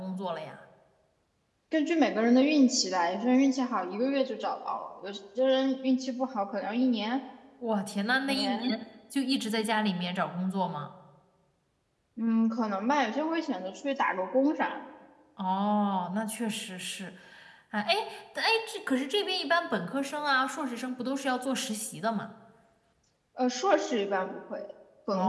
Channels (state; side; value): identical; both; correlation 1.00